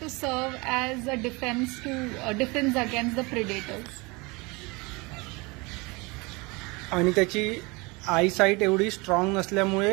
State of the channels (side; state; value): left; quieter; 26.2 dB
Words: to serve as a defense against the predators. आणि त्याची आयसाईट एवढी स्ट्रॉंग